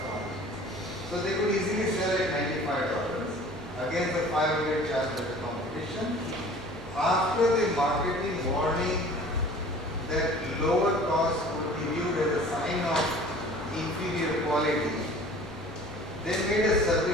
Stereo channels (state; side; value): normal; both; correlation 0.47